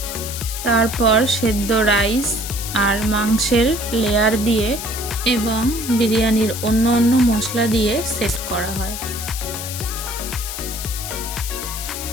তারপর সেদ্ধ রাইস আর মাংসের লেয়ার দিয়ে এবং বিরিয়ানির অন্য মশলা দিয়ে সেট করা হয়।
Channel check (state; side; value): noise; left; hiss, 7 dB below the sound